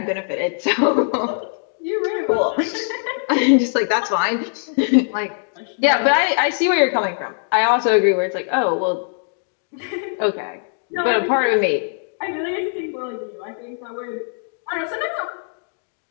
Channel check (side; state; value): right; silent; digital silence